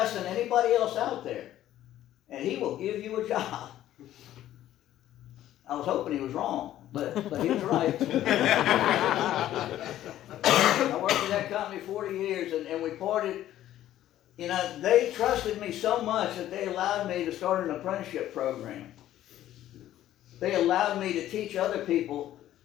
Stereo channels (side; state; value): right; quieter; 12.9 dB